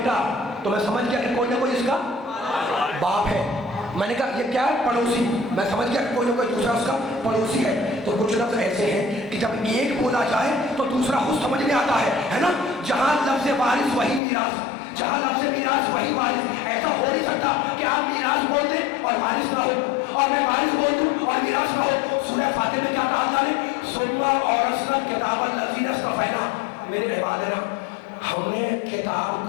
تو میں سمجھ گیا کہ کوئی نہ کوئی اس کا باپ ہے۔ میں نے کہا یہ کیا ہے؟ پڑوسی۔ میں سمجھ گیا کہ کوئی نہ کوئی دوسرا اس کا پڑوسی ہے۔ تو کچھ لفظ ایسے ہیں کہ جب ایک بولا جائے تو دوسرا خود سمجھ میں آتا ہے نا؟ جہاں لفظ وارث وہی میراث، جہاں لفظ میراث وہی وارث۔ ایسا ہو نہیں سکتا کہ آپ میراث بول دیں اور وارث نہ ہو، اور میں وارث بول دوں اور میراث نہ ہو۔ سورہ فاتر میں کیا کہا اللہ نے؟ ثم اورثنا الکتاب الذین اصطفینا من عبادنا، ہم نے کتاب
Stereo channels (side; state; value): right; drops out; at 14.2 s